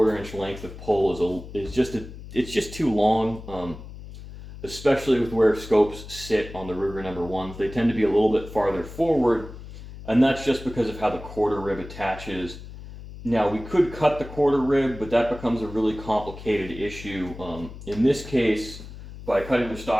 inch length of pull it's just too long. Especially with where scopes sit on the Ruger number 1s. They tend to be a little bit farther forward, and that's just because of how the quarter rib attaches. Now, we could cut the quarter rib, but that becomes a really complicated issue. In this case, by cutting the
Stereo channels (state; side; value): noise; left; hum, 14 dB below the sound